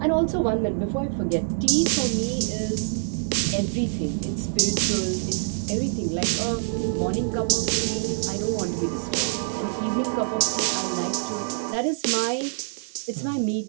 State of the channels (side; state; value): left; silent; digital silence